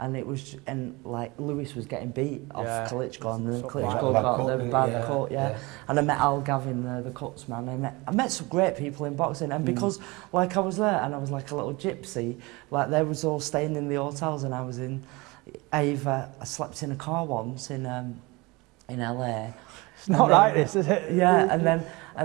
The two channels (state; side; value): quieter; left; 24.3 dB